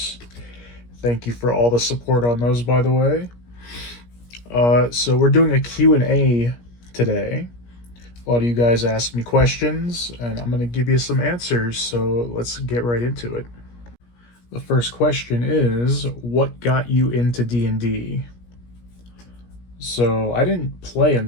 Thank you for all the support on those, by the way. So we're doing a Q&A today. A lot of you guys asked me questions, and I'm going to give you some answers, so let's get right into it. The first question is, what got you into D&D? So, I didn't play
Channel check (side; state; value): right; late; 17 ms